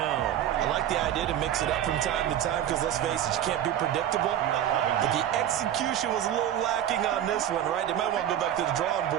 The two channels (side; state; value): left; quieter; 10.9 dB